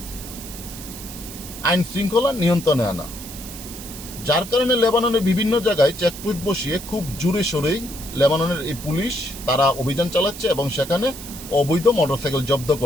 আইন শৃঙ্খলা নিয়ন্ত্রণে আনা, যার কারণে লেবাননের বিভিন্ন জায়গায় চেকপোস্ট বসিয়ে খুব জোরে সোরেই লেবাননের এই পুলিশ তারা অভিযান চালাচ্ছে এবং সেখানে অবৈধ মোটরসাইকেল জব্দ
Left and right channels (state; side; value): noise; right; hiss, 12 dB below the sound